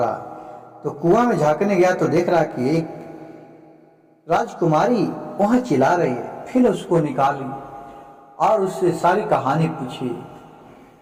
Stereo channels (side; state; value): both; identical; correlation 1.00